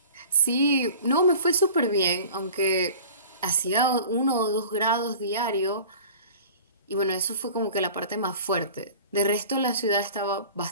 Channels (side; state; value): both; inverted; correlation -0.42